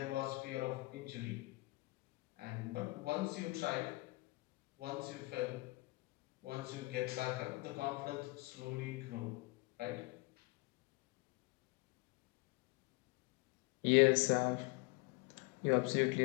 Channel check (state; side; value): quieter; right; 23.5 dB